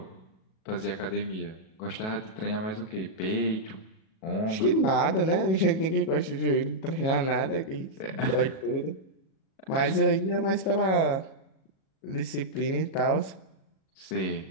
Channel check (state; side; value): late; right; 37 ms